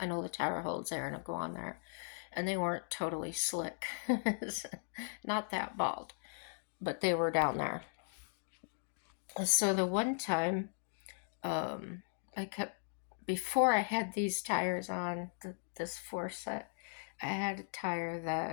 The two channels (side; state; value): right; silent; digital silence